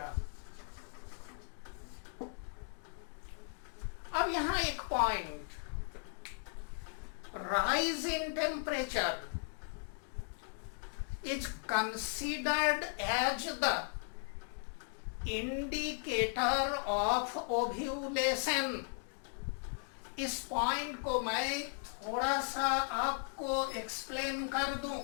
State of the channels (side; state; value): right; silent; 53 dB below the other